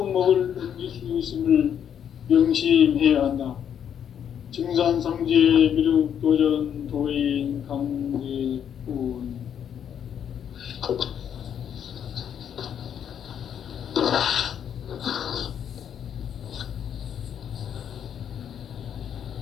넘길 수 있음을 명심해야 한다. 증산상제 미륵도전 도인 강대훈.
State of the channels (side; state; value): right; quieter; 8.8 dB